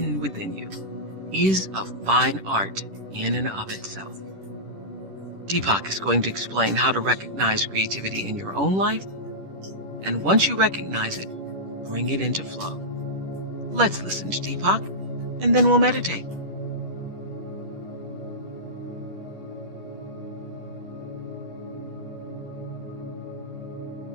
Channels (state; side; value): late; left; 10 ms